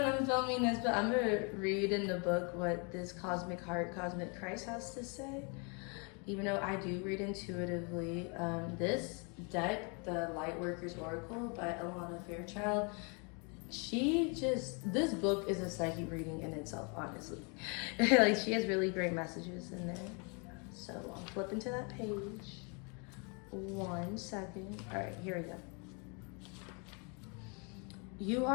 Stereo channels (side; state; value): right; quieter; 34.5 dB